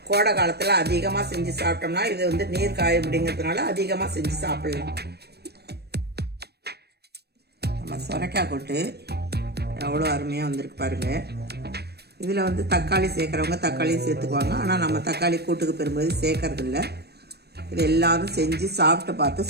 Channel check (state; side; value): late; left; 0.47 ms